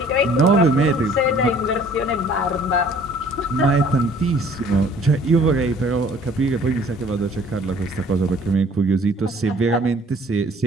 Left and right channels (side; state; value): both; normal; correlation 0.55